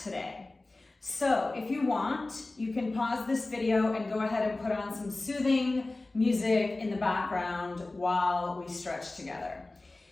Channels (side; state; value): right; quieter; 3.1 dB